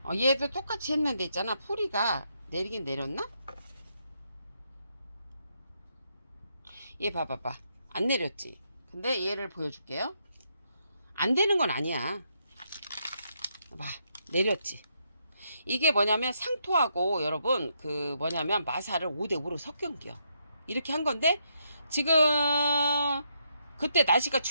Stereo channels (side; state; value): both; inverted; correlation -0.78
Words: 얘도 똑같이 했는데 있잖아. 뿌리가 내리긴 내렸나? 얘 봐봐봐. 안 내렸지. 근데 얘를 보여줄게요. 안 되는 건 아니야. 봐, 내렸지. 이게 뭐냐면 상토하고 여러분 그 뭐냐면 마사를 5대5로 섞은겨. 이렇게 한 건데 지금 그때 날씨가